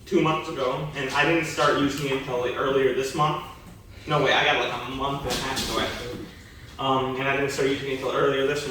2 months ago, and I didn't start using it until like earlier this month. No, wait, I got like a month and a half ago actually. And I didn't start using it until earlier this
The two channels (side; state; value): both; identical; correlation 1.00